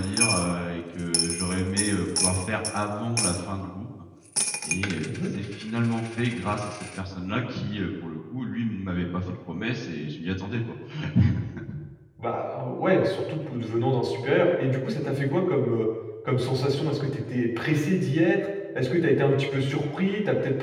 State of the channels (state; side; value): identical; both; correlation 1.00